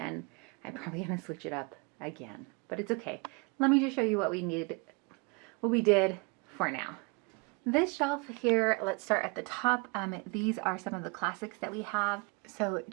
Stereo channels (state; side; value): quieter; left; 30.8 dB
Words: I'm probably gonna switch it up again, but it's okay. Let me just show you what we did for now. This shelf here, let's start at the top. These are some of the classics that we have. So